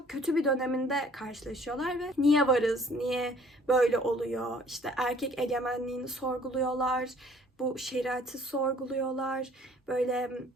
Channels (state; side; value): normal; both; correlation 0.56